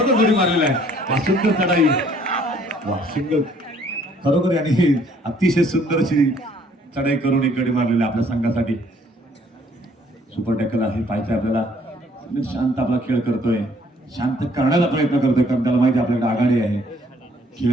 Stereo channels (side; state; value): both; normal; correlation 0.61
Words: गडी मारलेला आहे. सुंदर चढाई, वा सिंगल, खरोखर यांनी अतिशय सुंदर अशी चढाई करून एक गडी मारलेला आपल्या संघासाठी. सुपर टॅकल आहे, पाहायचं आपल्याला. शांत आपला खेळ करतोय, शांत करण्याचा प्रयत्न करतोय, कारण त्याला माहिती आपल्याकडे आघाडी आहे.